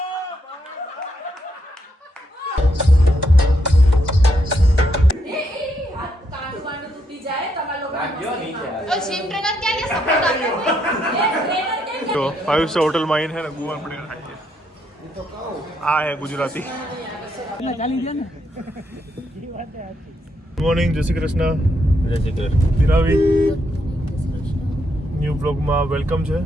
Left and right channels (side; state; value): both; normal; correlation 0.77